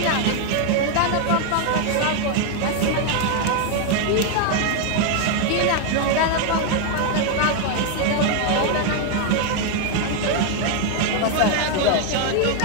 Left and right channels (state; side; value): different; both; correlation 0.01